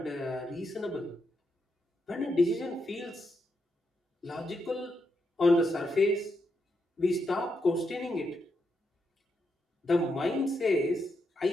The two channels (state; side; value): normal; both; correlation 0.82